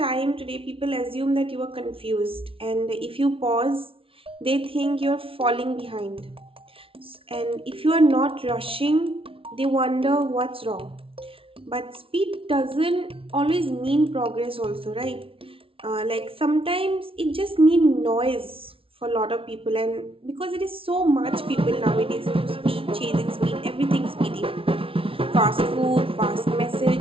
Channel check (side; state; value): left; late; 0.26 ms